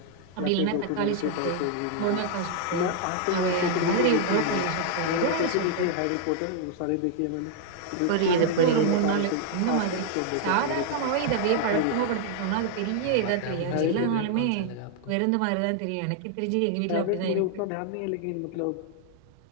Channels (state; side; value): different; both; correlation 0.00